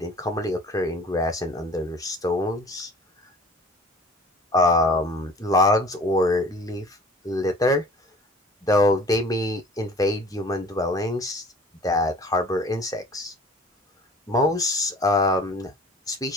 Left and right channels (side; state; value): both; normal; correlation 0.47